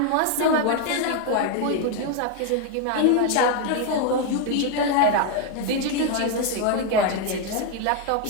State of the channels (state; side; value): different; both; correlation 0.01